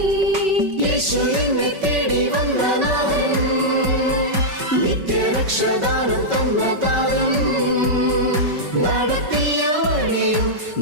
യേശുവിനെ തേടി വന്ന നാഥൻ, നിത്യരക്ഷദാനം തന്ന താരൻ, നടത്തിയ വഴിയും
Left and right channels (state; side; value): late; left; 5.3 ms